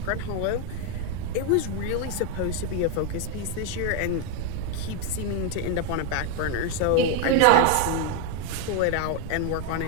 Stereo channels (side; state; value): both; different; correlation 0.01